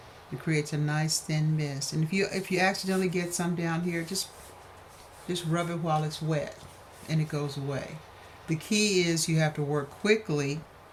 It creates a nice thin mist. And if you accidentally get some down here, just rub it while it's wet and it goes away. The key is you have to work quickly,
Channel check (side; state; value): both; identical; correlation 1.00